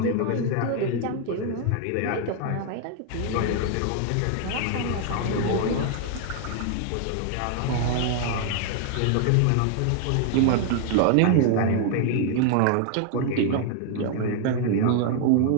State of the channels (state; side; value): different; both; correlation 0.00